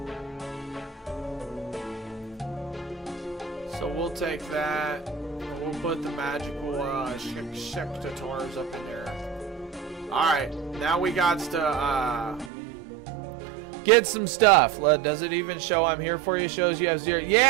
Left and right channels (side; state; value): left; drops out; at 12.5 s